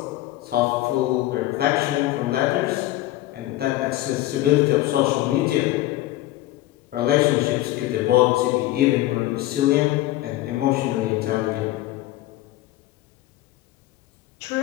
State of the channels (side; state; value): right; quieter; 16.0 dB